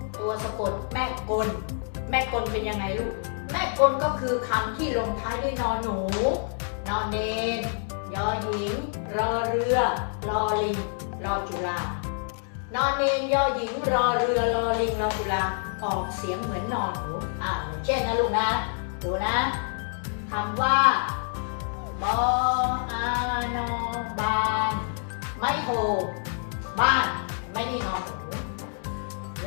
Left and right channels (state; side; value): silent; right; 56 dB below the other